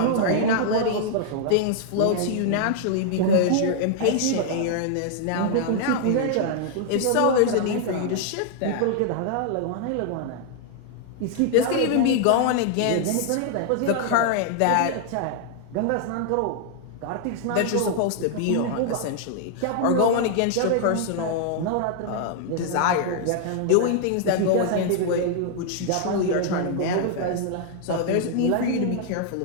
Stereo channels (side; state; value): both; different; correlation 0.00